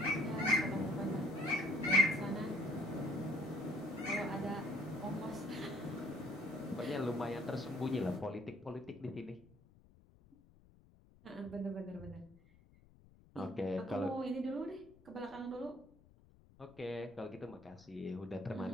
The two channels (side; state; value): left; noise; rumble, 25 dB below the sound